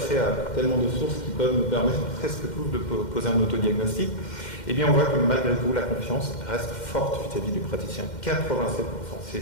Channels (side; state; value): right; late; 2.1 ms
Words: à tellement de sources qui peuvent nous permettre presque tous de poser un autodiagnostic. Eh bien, on voit que malgré tout, la confiance reste forte vis-à-vis du praticien. 87%,